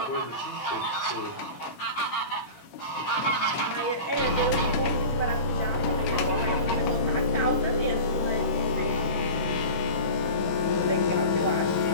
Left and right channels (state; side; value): late; right; 15 ms